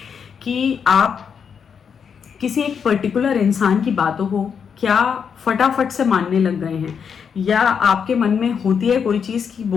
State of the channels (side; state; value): right; quieter; 6.9 dB